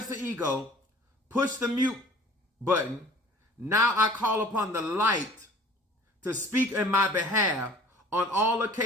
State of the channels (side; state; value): both; normal; correlation 0.48